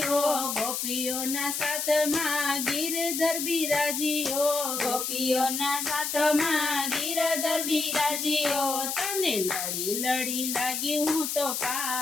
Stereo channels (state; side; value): noise; left; hiss, 2 dB below the sound